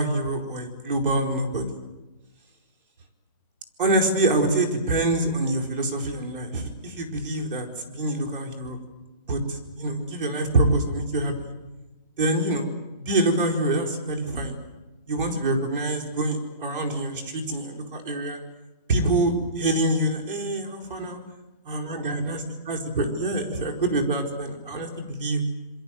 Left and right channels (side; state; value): both; inverted; correlation -0.36